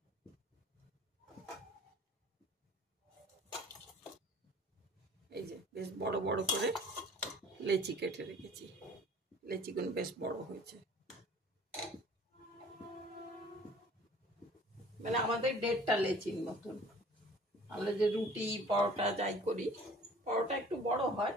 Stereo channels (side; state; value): both; normal; correlation 0.50